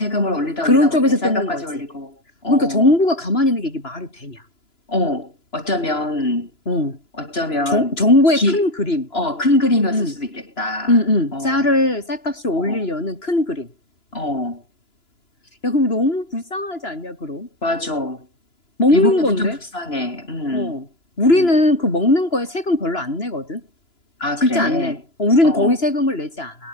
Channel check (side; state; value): right; late; 2.9 ms